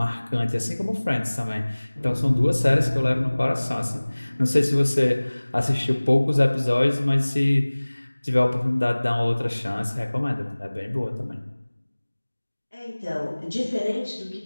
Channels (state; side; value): inverted; both; correlation -1.00